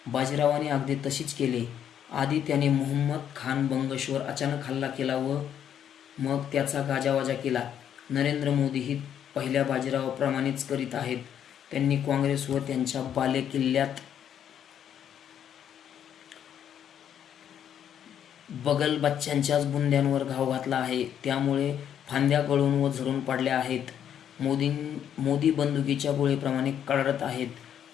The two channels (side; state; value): right; quieter; 9.4 dB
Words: बाजीरावाने अगदी तशीच केले. आधी त्याने मुहम्मद खान बंगशवर अचानक हल्ला केला व मग त्याचा गाजावाजा केला. नरेंद्र मोदीही पहिल्या बाजीरावाप्रमाणेच करीत आहेत. त्यांनी काँग्रेस व त्यांच्या बालेकिल्ल्यात बगलबच्च्यांच्याच बुंद्यांवर घाव घातला आहे. त्यामुळे फांद्या गळून व झडून पडल्या आहेत. मोदी बंदुकीच्या गोळीप्रमाणे कडाडत आहेत